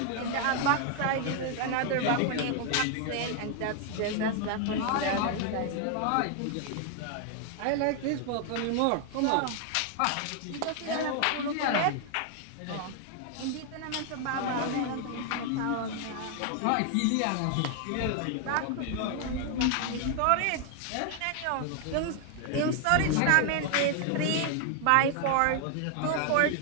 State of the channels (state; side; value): different; both; correlation 0.00